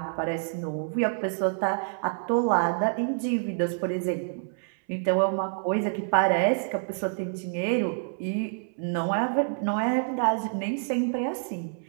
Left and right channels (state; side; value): silent; left; 60 dB below the other